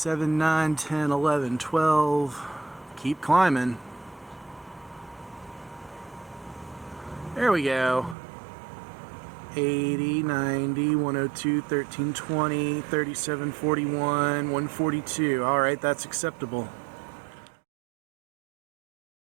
9, 10, 11, 12. Keep climbing. There we go. 80, 90, 102, 13, 20, 37, 41, 142. All right, that's acceptable.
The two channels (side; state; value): left; drops out; at 8.2 s